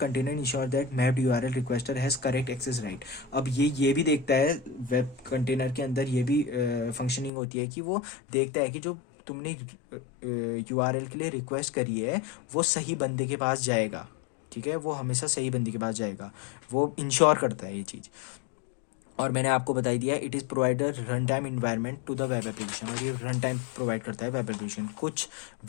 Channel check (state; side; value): drops out; right; at 7.3 s